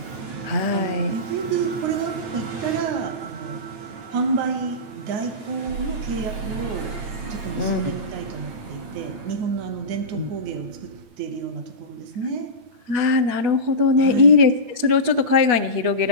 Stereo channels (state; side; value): late; left; 9.0 ms